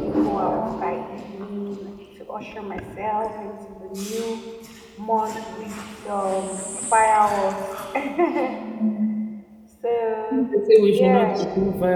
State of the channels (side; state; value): both; identical; correlation 1.00